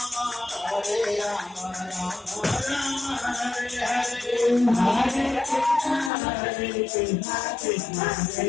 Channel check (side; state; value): right; drops out; at 6.1 s